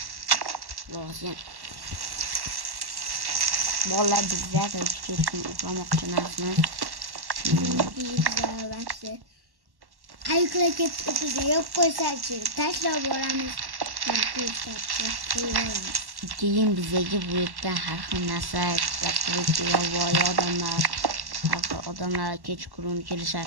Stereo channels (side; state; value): left; late; 1.1 ms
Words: Lozim. Bola bizlar kechqurun uxlamoqchi emasmiz. Aykla ketib yo'q qo'ysachi, tashlab boramiz. Keyin bizga bu yerdan har xil narsa ishlab turibdi, yovvoyi odamlar Har xil odamlar kechqurun